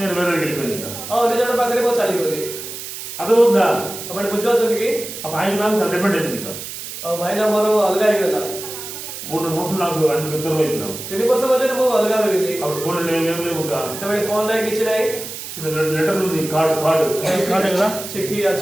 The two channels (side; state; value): right; noise; hiss, 9 dB below the sound